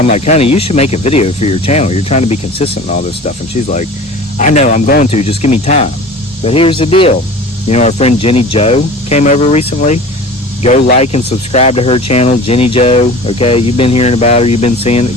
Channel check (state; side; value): noise; right; rumble, 28 dB below the sound